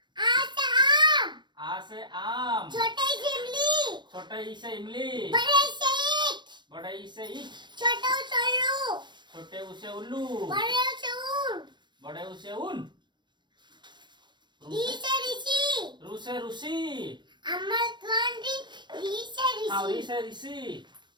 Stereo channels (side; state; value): left; late; 0.22 ms